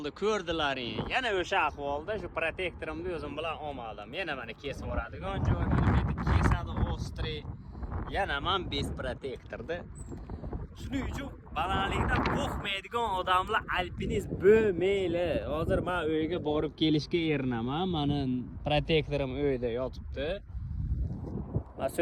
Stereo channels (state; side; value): identical; both; correlation 1.00